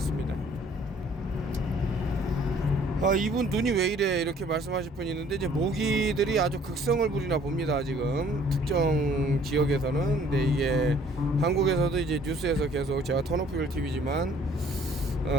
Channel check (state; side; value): normal; both; correlation 0.58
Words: 이분 눈이 왜 이래 이렇게 말씀하실 분이 있는데, 이제 모기들이 아주 극성을 부리나 봅니다. 지금 특정 지역에서는. 근데 이게 한국에서도 이제 뉴스에서 계속, 제가 턴오프힐 TV지만